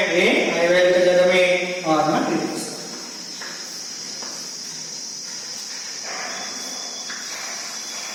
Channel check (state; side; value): identical; both; correlation 1.00